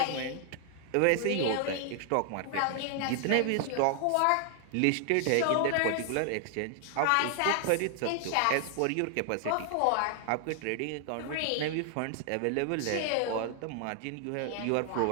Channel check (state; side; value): different; both; correlation 0.00